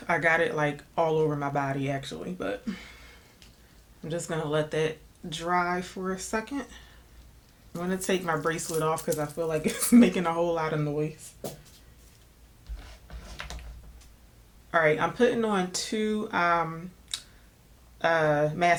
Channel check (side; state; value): both; identical; correlation 1.00